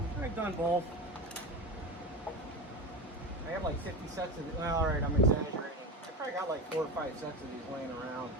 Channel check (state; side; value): normal; both; correlation 0.23